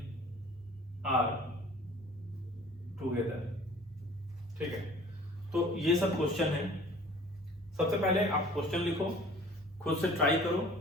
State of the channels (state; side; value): normal; both; correlation 0.49